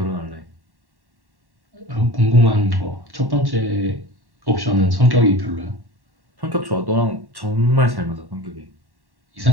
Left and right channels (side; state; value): left; late; 1.1 ms